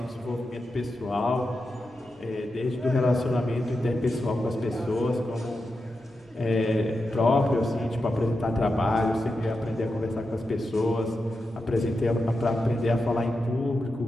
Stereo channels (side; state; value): both; normal; correlation 0.89